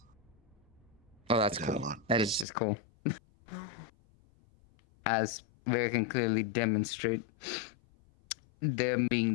Oh, that's cool. That is just cool. As we can clearly demonstrate, them being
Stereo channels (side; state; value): right; drops out; at 2.5 s